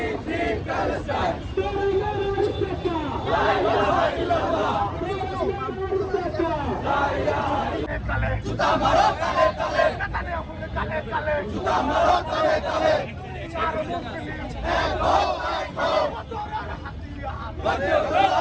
Free Palestine. La ilaha illallah. Juta maro tale tale. Juta maro tale tale.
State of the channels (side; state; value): both; identical; correlation 1.00